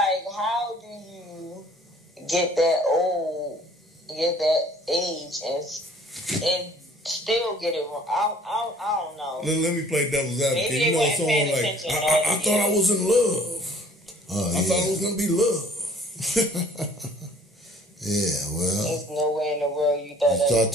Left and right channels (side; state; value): both; normal; correlation 0.54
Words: how do you get that old, get that age, and still get it wrong? I don't know. Let me play devil's advocate. Maybe you know, someone like, I thought I was in love. I thought it was going to be love. Yeah, well. There's nowhere in the world you thought that. You thought